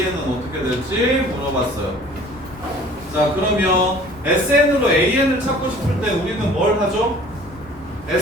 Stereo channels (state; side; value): noise; left; rumble, 21 dB below the sound